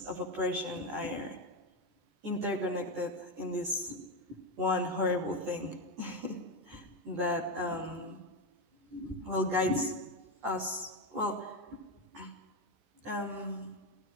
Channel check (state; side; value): late; left; 14 ms